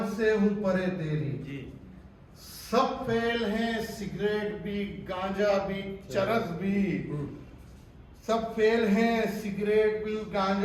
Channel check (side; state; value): both; identical; correlation 1.00